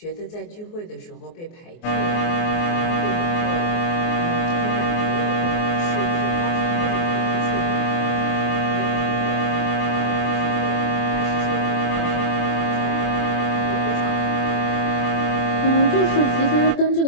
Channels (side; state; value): right; late; 24 ms